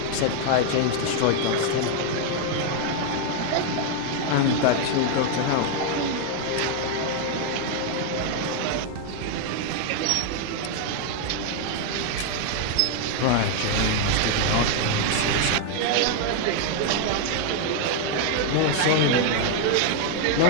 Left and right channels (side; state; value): both; different; correlation 0.00